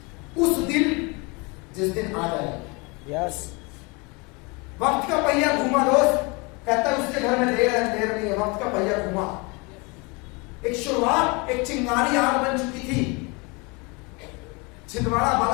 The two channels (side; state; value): right; quieter; 28.6 dB